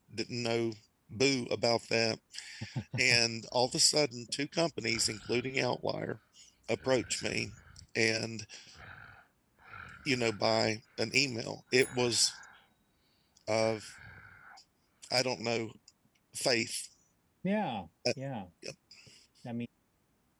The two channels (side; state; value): both; identical; correlation 1.00